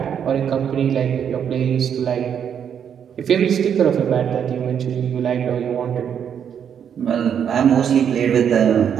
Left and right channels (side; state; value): left; quieter; 8.2 dB